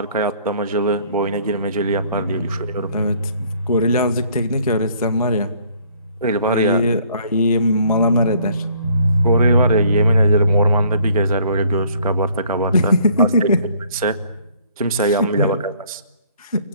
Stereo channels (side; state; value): both; inverted; correlation -0.60